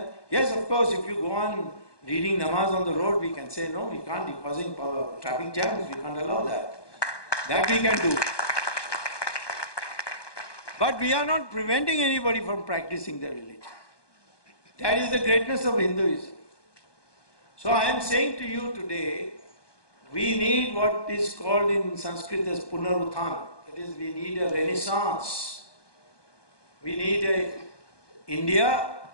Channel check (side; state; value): right; late; 1.2 ms